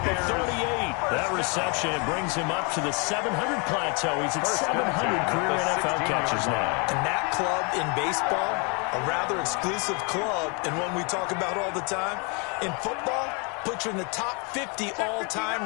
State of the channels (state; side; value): quieter; right; 33.3 dB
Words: at 38. That reception brings him up to the 700 plateau. He's at 700 career NFL catches now. And that club in baseball, a rather exclusive club, and one we talk about all the time. In football, puts you in the top 50